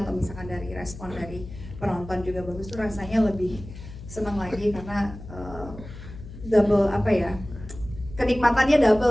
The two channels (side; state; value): left; noise; hum, 14 dB below the sound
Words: misalkan dari respon dari penonton juga bagus, tuh rasanya lebih senang lagi karena double, apa ya, kenikmatannya